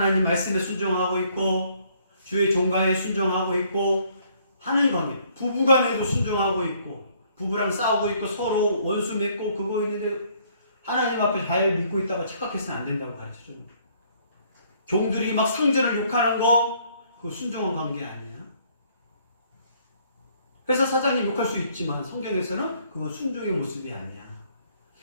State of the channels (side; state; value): both; inverted; correlation -0.64